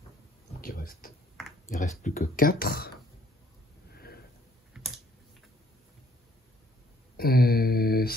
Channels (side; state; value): both; normal; correlation 0.64